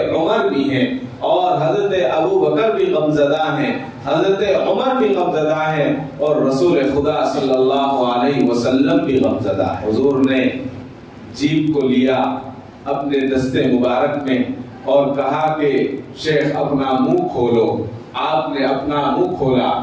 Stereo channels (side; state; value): both; identical; correlation 1.00